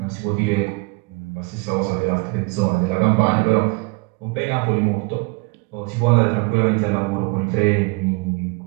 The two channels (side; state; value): left; quieter; 28.0 dB